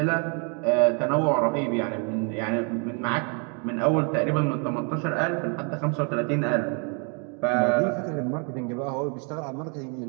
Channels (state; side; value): quieter; left; 36.9 dB